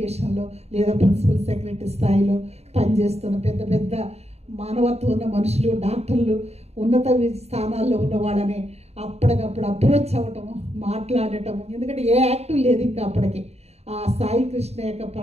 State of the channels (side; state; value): left; late; 0.31 ms